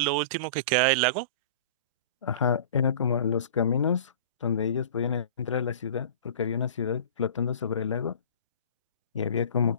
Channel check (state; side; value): inverted; both; correlation -0.39